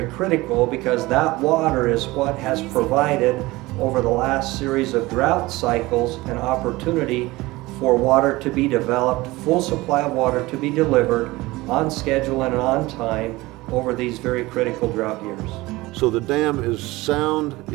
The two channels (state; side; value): quieter; left; 20.3 dB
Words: critical because that water is what has provided over the last series of drought cycles an opportunity for water to be developed, full supply of water to be delivered on schedule and on time over these very critical drought years. So the dam is sound,